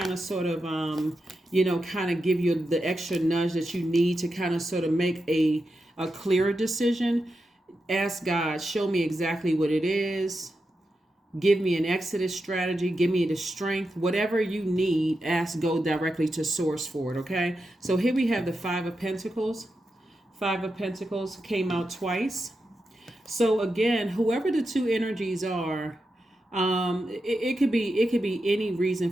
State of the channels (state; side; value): normal; both; correlation 0.88